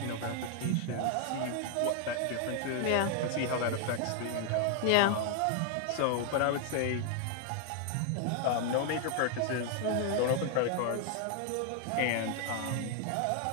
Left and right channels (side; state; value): both; different; correlation 0.00